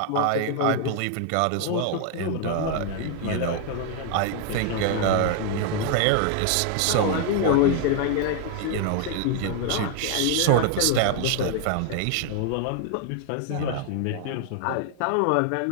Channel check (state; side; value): different; both; correlation 0.00